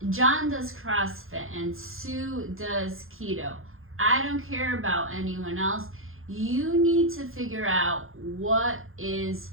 John does CrossFit and Sue does keto. I don't care about anyone else. You need to figure out what is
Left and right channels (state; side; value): late; left; 0.60 ms